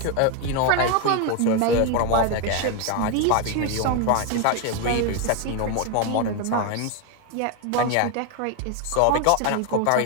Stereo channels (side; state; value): both; different; correlation 0.01